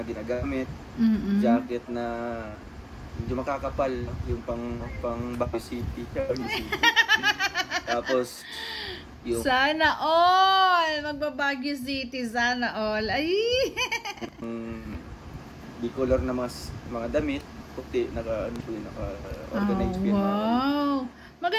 ginagamit. Jacket na medyo makakapal, no? Yung pang Baguio City. Tapos, yung... Sana all! Magbabaguio City, sana all. Ay! Di color na mga damit, puti, naka-organized yan. Wow!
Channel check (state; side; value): identical; both; correlation 1.00